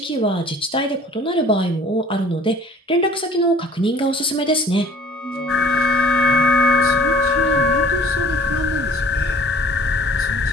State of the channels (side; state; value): both; normal; correlation 0.50